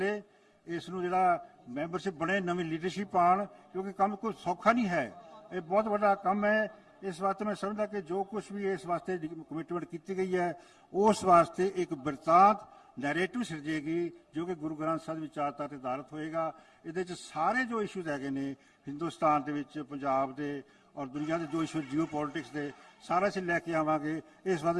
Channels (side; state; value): both; identical; correlation 1.00